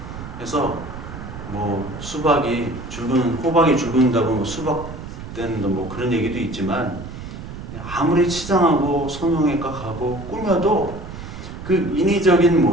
그래서 뭐 수박이 호박이 죽는다고 뭐 수박 때는 뭐 그런 얘기도 있지만, 아무리 치장하고 성형외과 가고 꾸며도 그 인위적인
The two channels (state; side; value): noise; right; rumble, 11 dB below the sound